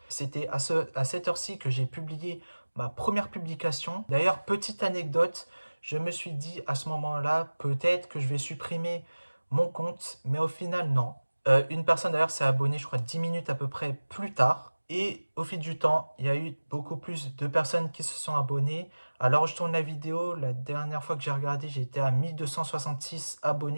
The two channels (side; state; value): both; inverted; correlation -1.00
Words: C'était à cette heure-ci que j'ai publié ma première publication. D'ailleurs, petite anecdote, je me suis dit à ce moment-là, peut-être que je vais supprimer mon compte, mais au final, non. Une personne d'ailleurs s'est abonnée, je crois, 10 minutes à peu près plus tard. Et au fil du temps, il y a eu beaucoup plus de personnes qui se sont abonnées. Alors, je tourne la vidéo. La dernière fois que j'ai regardé, j'étais à 1266